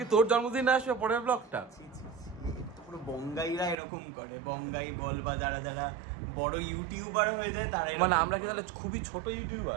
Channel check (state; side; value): drops out; left; at 3.8 s